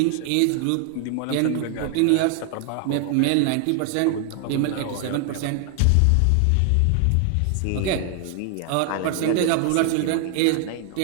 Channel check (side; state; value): both; different; correlation 0.00